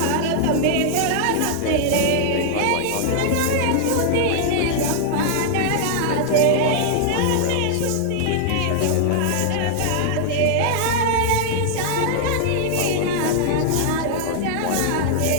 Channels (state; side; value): different; both; correlation -0.01